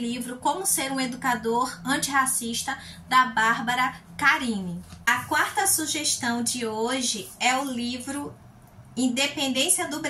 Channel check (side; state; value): both; identical; correlation 1.00